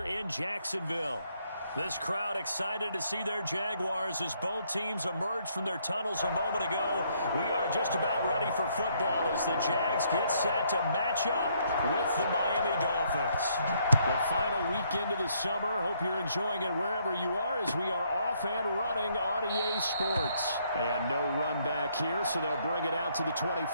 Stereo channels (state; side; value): inverted; both; correlation -0.70